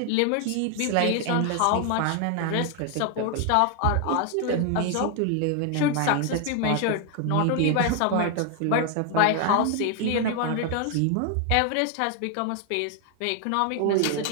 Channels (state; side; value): different; both; correlation 0.00